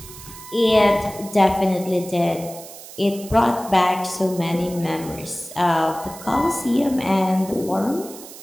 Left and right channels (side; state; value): right; noise; hiss, 16 dB below the sound